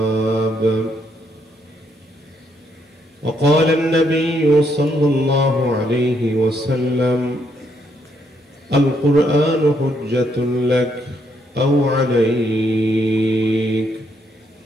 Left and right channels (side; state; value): both; normal; correlation 0.74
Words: وقال النبي صلى الله عليه وسلم القرآن حجة لك أو عليك